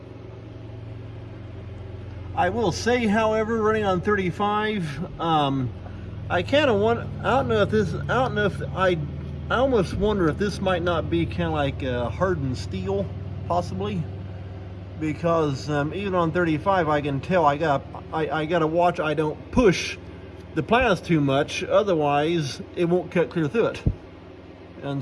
I will say, however, running on 35, I kind of want, I don't know if I almost wonder if this might not be kind of like hardened steel, possibly, because even on 35, I can tell I gotta watch I don't push the plants too much, otherwise it won't cut clear through it.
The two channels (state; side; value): identical; both; correlation 1.00